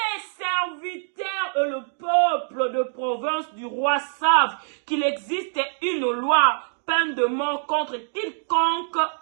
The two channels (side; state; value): left; silent; 62 dB below the other